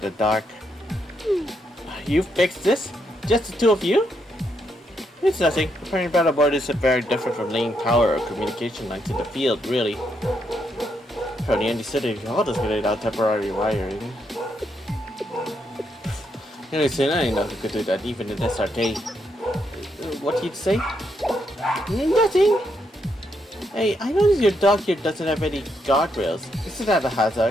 the dark. You fixed this? Just the two of you? It's nothing. Repairing panel board isn't very different from laying power or communication lines in the field, really. From the Andy City, all just laid out temporary wiring. Anyways, I know who could do that, even in this arcade. What did you say? Nothing! Hey, I noticed your dock here doesn't have any guardrails. Isn't that a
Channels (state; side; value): normal; both; correlation 0.78